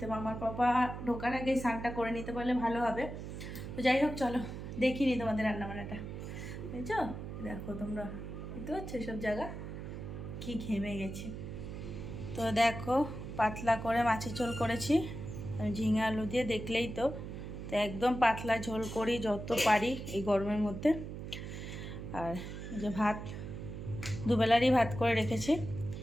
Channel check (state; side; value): noise; right; hum, 8 dB below the sound